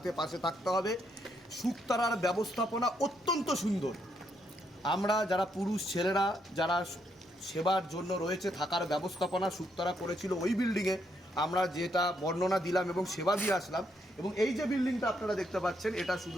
পাশে থাকতে হবে। শুকতারার ব্যবস্থাপনা অত্যন্ত সুন্দর। আমরা যারা পুরুষ ছেলেরা যারা সেবার জন্য রয়েছে, থাকার ব্যবস্থাপনা শুকতারা করেছিল ওই বিল্ডিংয়ে, আমরা যেটা বর্ণনা দিলাম এবং সেবা দিয়ে আসলাম। এবং এই যে বিল্ডিংটা আপনারা দেখতে পাচ্ছেন, এটা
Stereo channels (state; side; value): normal; both; correlation 0.76